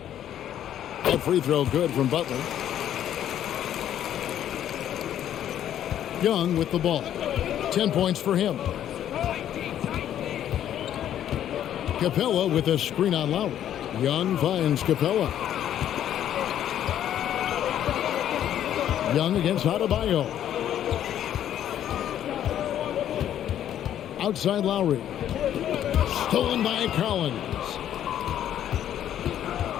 That free throw good from Butler. Young with the ball. 10 points for him. Capella with a screen on Lowry. Young finds Capella. Young against Adebayo. Outside Lowry. Stolen by Collins.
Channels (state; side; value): quieter; right; 10.8 dB